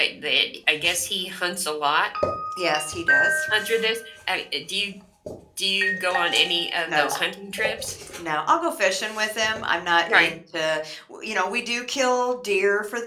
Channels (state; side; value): identical; both; correlation 1.00